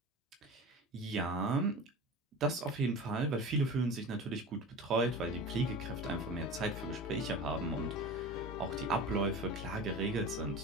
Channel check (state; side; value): normal; both; correlation 0.33